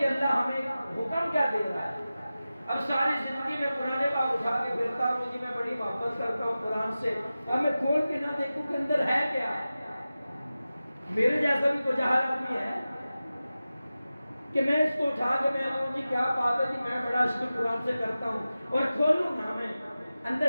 اللہ ہمیں حکم کیا دے رہا ہے۔ اب ساری زندگی میں قرآن پاک اٹھا کے پھرتا ہوں، جی میں بڑی محبت کرتا ہوں قرآن سے، اب میں کھول کے نہ دیکھوں کہ اندر ہے کیا۔ میرے جیسا بھی کوئی جاہل آدمی ہے کہ میں اس کو اٹھا کے میں کہوں جی کیا بات ہے جی، میں بڑا عشق قرآن سے کرتا ہوں اور کھولوں نا میں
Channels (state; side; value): inverted; both; correlation -0.95